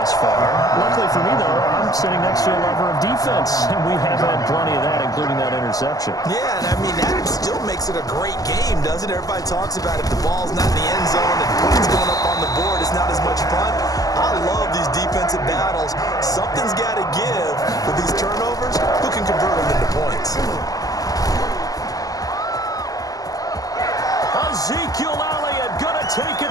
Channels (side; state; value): right; late; 0.17 ms